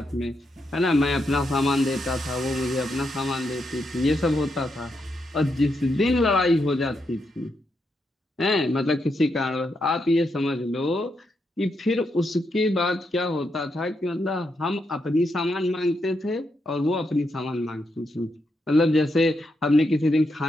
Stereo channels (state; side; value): normal; both; correlation 0.82